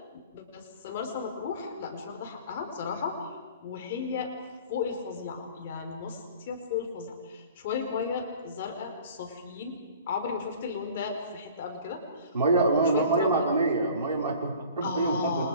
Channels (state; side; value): inverted; both; correlation -0.46